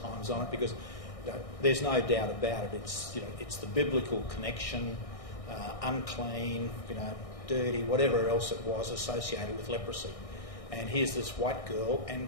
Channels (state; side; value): late; right; 1.6 ms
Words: on it, because there's no doubt about it. It's the biblical connection, unclean, dirty, whatever else it was associated with leprosy. And here's this white girl,